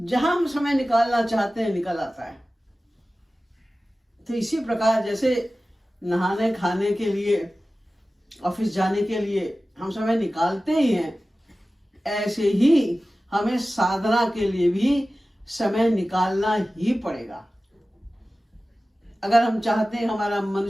हम समय निकालना चाहते हैं निकल आता है। तो इसी प्रकार जैसे नहाने खाने के लिए, ऑफिस जाने के लिए हम समय निकालते ही हैं, ऐसे ही हमें साधना के लिए भी समय निकालना ही पड़ेगा। अगर हम चाहते हैं हमारा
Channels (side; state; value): both; normal; correlation 0.96